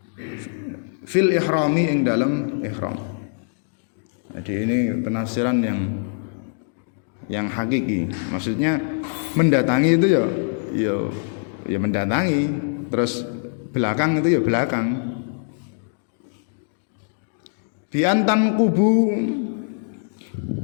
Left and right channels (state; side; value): silent; right; digital silence